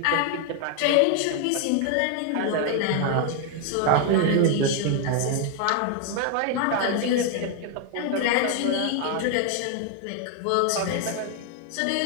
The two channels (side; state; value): both; different; correlation 0.00